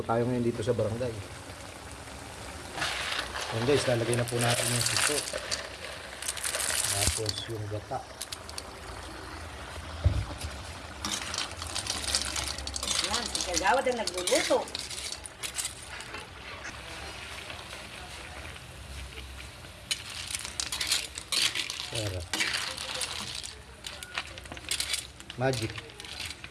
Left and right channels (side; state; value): both; identical; correlation 1.00